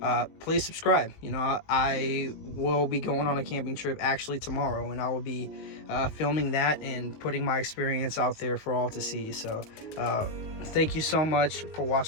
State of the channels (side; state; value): right; late; 19 ms